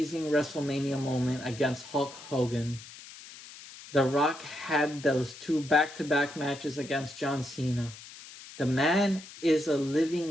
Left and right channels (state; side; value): noise; left; hiss, 16 dB below the sound